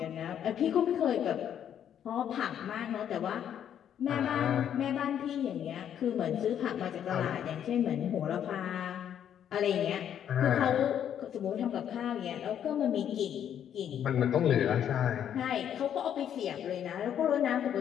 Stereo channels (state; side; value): quieter; right; 9.5 dB